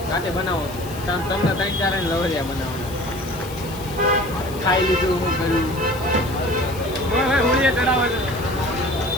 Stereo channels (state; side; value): noise; left; hiss, 17 dB below the sound